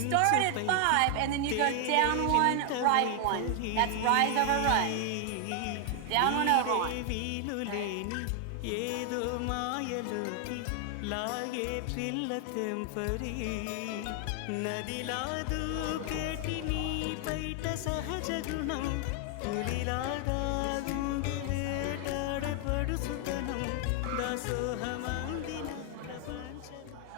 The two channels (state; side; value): different; both; correlation 0.00